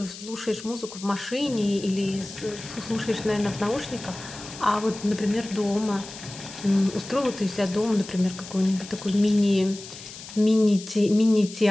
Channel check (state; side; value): noise; left; hiss, 14 dB below the sound